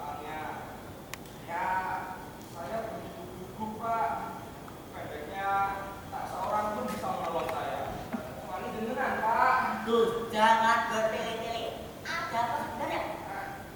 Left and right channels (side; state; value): both; identical; correlation 1.00